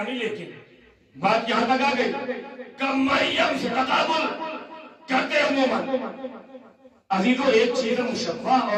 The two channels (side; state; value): both; identical; correlation 1.00